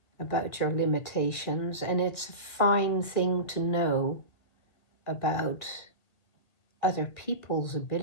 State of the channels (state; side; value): late; right; 1.7 ms